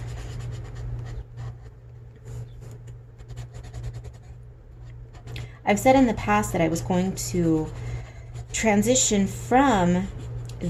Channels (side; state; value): both; identical; correlation 1.00